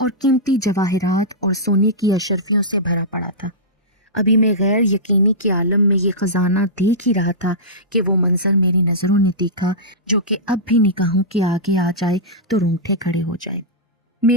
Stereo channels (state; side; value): normal; both; correlation -0.15